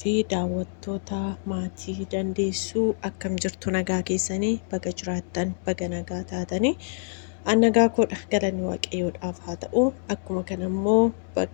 fi daawwattoota maatii dandeessuu akkam jirtu nagaa keessanii baga jiraattan baga nagaa taatanii nagaa koodha galanni waaqayyoodhaaf haa ta'u akkuma kana immoo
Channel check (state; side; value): silent; right; digital silence